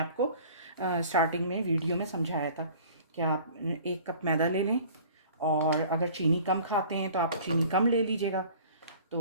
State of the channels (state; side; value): inverted; both; correlation -0.48